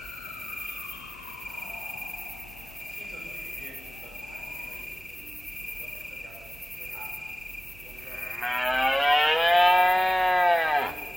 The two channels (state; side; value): normal; both; correlation 0.98